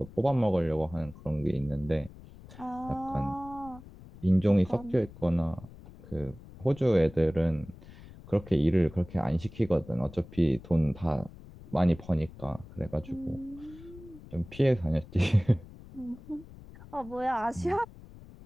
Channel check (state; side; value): noise; left; rumble, 18 dB below the sound